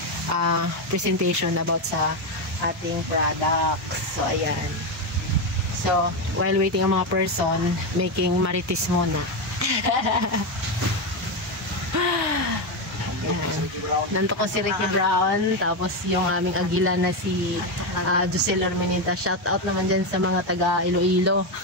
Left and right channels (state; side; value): normal; both; correlation 0.10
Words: presentation about sa ating products. So ayan. So while waiting ang mga person, making marites muna. Nanto ko si Ricky Brown, tapos yung aming agila na si Josel Ormenita. Shout out naman dyan sa mga taga Iloilo.